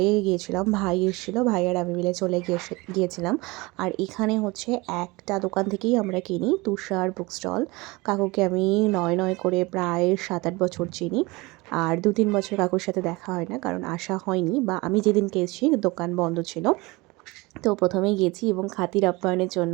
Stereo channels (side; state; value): left; quieter; 23.5 dB